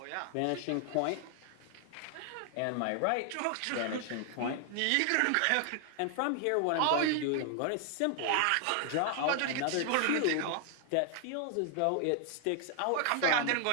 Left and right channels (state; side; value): different; both; correlation 0.00